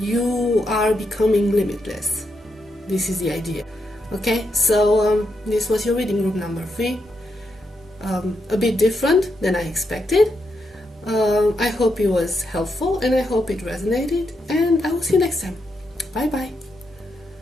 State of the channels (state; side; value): normal; both; correlation 0.82